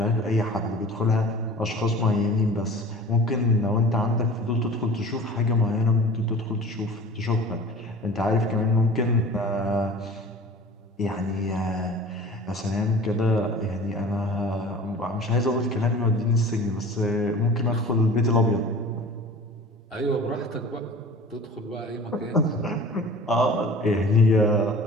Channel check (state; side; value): normal; both; correlation 0.42